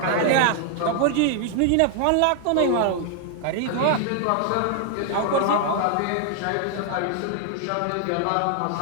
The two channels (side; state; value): both; different; correlation 0.00